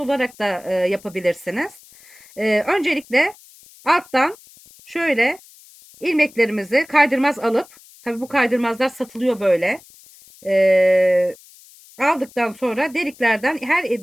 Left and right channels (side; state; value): left; noise; hiss, 24 dB below the sound